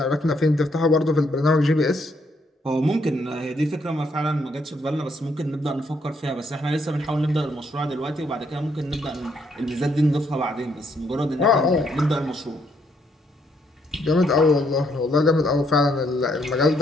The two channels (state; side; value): normal; both; correlation 0.72